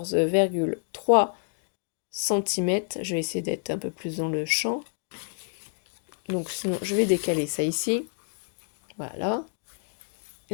cm. Je vais essayer d'être un peu plus dans le champ. Donc sinon, je vais décaler ça ici. Voilà.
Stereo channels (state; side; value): silent; right; digital silence